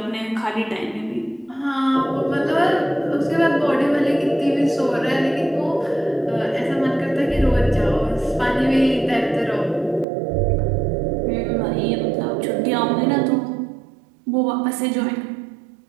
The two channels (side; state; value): left; drops out; at 10.1 s